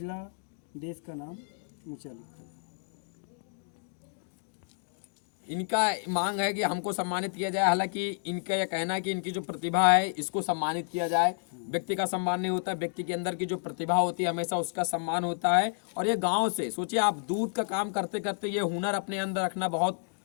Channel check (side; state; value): right; silent; digital silence